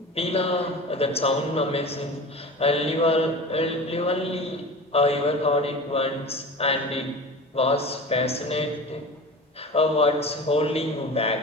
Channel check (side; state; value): both; normal; correlation 0.34